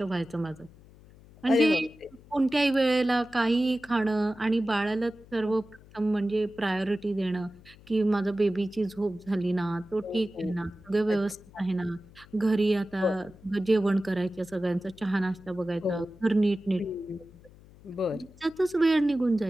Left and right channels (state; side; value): noise; left; hum, 23 dB below the sound